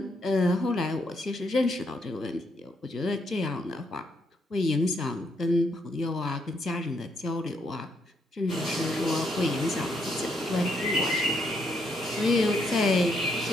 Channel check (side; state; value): both; normal; correlation 0.75